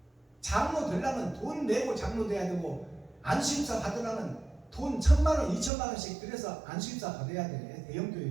장로 되려면 돈 내고 장로 돼야 되고, 안수입사 받으려면 돈 1,000만원 2,000만원씩 들여서 안수입사 받아야 돼. 대형교회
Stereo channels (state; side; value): drops out; left; at 5.7 s